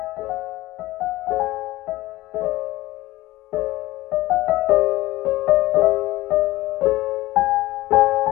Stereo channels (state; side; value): quieter; right; 17.5 dB